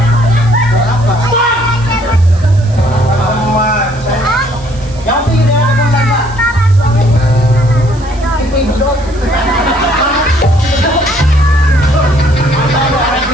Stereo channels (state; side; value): noise; right; hiss, 23 dB below the sound